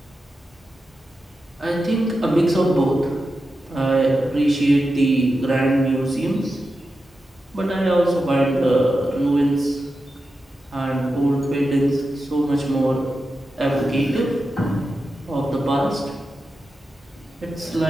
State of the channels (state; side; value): normal; both; correlation 0.90